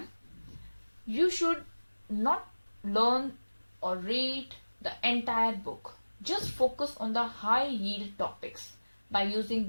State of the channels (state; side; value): inverted; both; correlation -1.00